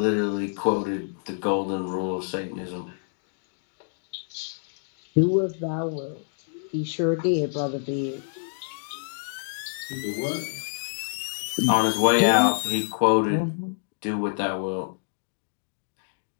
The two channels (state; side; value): silent; right; digital silence